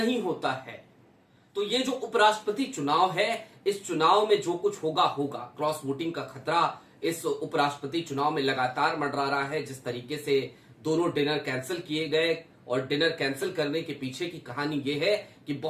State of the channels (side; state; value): both; identical; correlation 1.00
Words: होता है तो ये जो उपराष्ट्रपति चुनाव है, इस चुनाव में जो कुछ होगा होगा। क्रॉस वोटिंग का खतरा इस उपराष्ट्रपति चुनाव में लगातार मंडरा रहा है। जिस तरीके से दोनों डिनर कैंसिल किए गए और डिनर कैंसिल करने के पीछे की कहानी यह है कि